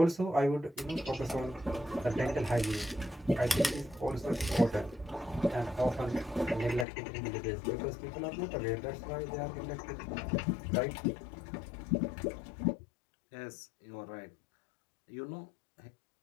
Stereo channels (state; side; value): drops out; right; at 6.9 s